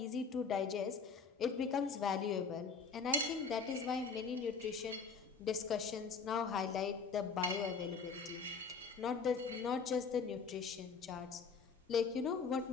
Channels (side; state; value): right; quieter; 5.2 dB